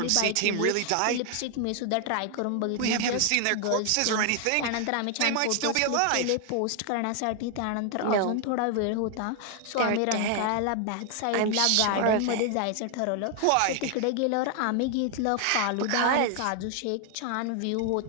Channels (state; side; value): different; both; correlation 0.00